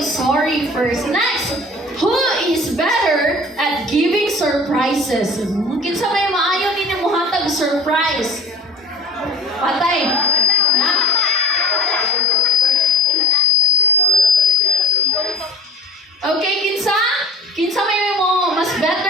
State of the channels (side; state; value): both; normal; correlation 0.38